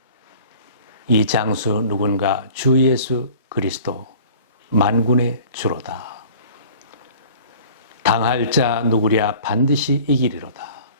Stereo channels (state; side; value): inverted; both; correlation -0.47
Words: 이 장수 누군가 주 예수 그리스도 만군의 주로다. 당할 자 누구랴 반드시 이기리로다.